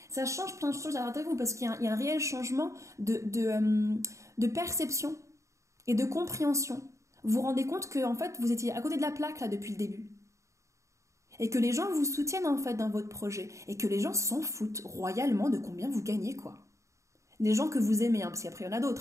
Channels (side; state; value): left; late; 0.15 ms